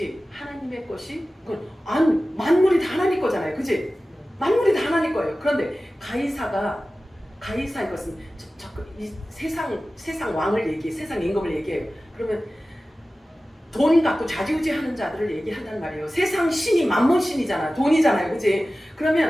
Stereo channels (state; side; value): normal; both; correlation 0.96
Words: 만물이 다 하나님 거잖아요. 그지? 만물이 다 하나님 거예요. 그런데 가이사의 것은 이 세상 왕을 얘기해, 세상 임금을 얘기해요. 그러면 돈 갖고 좌지우지하는 자들을 얘기한단 말이에요. 세상 신이 만몬 신이잖아. 돈이잖아요. 그지?